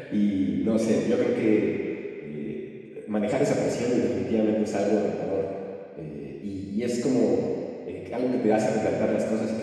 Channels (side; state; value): both; identical; correlation 1.00